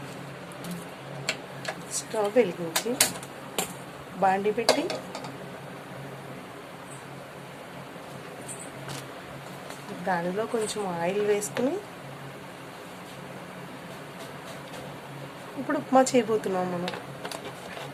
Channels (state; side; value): identical; both; correlation 1.00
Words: స్టవ్ వెలిగించి బాండి పెట్టి దానిలో కొంచెం ఆయిల్ వేసుకుని ఇప్పుడు ఉప్మా చేయబోతున్నాం మనం.